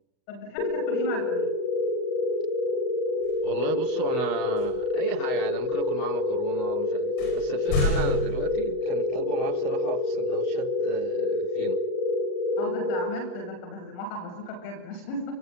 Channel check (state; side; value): late; right; 38 ms